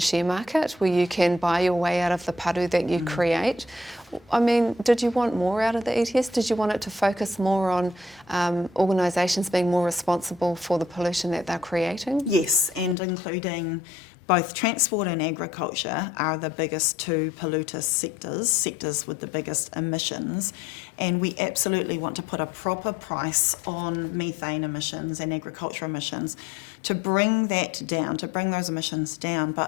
market where you can buy your way out of the paru that you create. I mean, did you want more out of the ETS? Did you want it to focus more on organisations being more responsible for the pollution that they're creating? Yes, and including both transport and agriculture are the biggest 2 polluter sectors with the biggest emissions, and we absolutely want to put a proper price on methane emissions and agriculture emissions to bring that down, to bring those emissions down,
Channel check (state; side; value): drops out; right; at 13.0 s